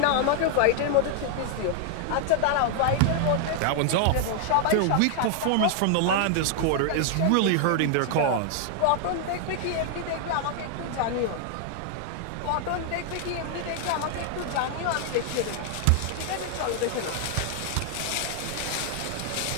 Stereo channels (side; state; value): both; different; correlation 0.00